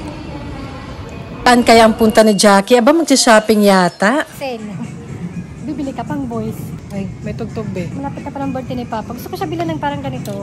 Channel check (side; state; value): both; identical; correlation 1.00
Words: Saan kaya ang punta ni Jackie? Aba, magsha-shopping yata. Sale. Bibili ka pang boys. Ay, may tugtog be. Malapit na parang birthday ni Papa. Gusto ko siya bilan ng parang ganito.